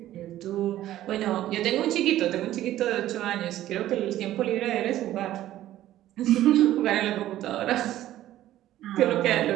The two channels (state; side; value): quieter; left; 13.7 dB